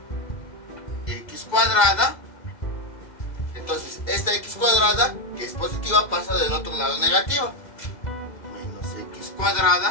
x cuadrada. Entonces esta x cuadrada, que es positiva, pasa del otro lado negativa. Menos x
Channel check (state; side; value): late; right; 2.0 ms